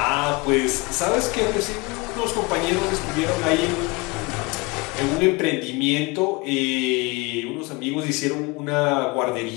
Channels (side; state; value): right; quieter; 25.7 dB